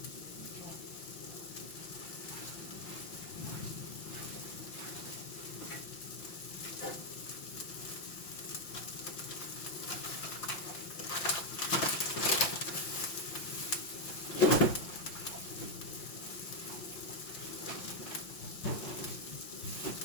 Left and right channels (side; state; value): right; late; 5.7 ms